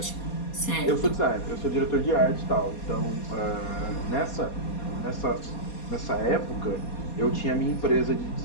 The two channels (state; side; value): late; right; 4.2 ms